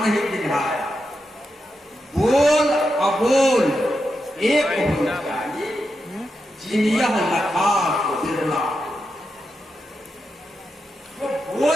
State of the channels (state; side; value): normal; both; correlation 0.87